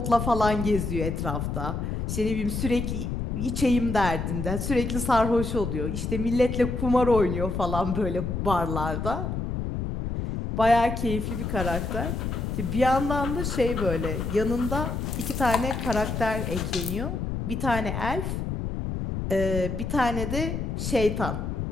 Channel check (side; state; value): left; noise; rumble, 3 dB below the sound